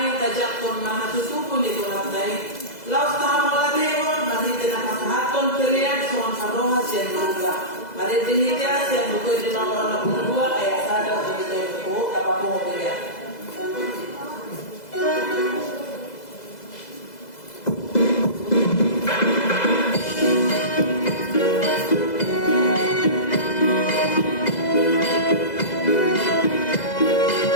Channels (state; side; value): late; right; 2.0 ms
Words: tajak pun mahatutupu ni Tuhan dai. Laus tahamu ladero, mari dengan haton kelian suan haroha sian luka. Mari dihidya sian luka di nomor 62 ayat 1 sampai 10 apa pun kelian.